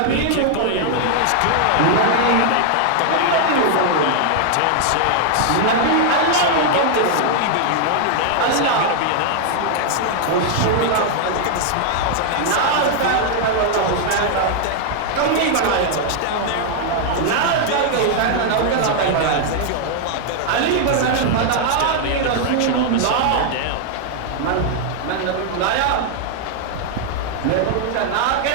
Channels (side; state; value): both; different; correlation 0.00